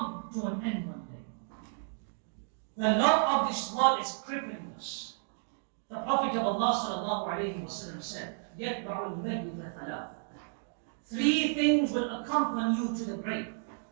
to an end one day. The love of this world is crippling us. The Prophet of Allah sallallahu alayhi wa sallam said, يَتْبَعُ الْمَيِّتَ ثَلَاثٍ. Three things will accompany you to the grave.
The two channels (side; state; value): left; silent; digital silence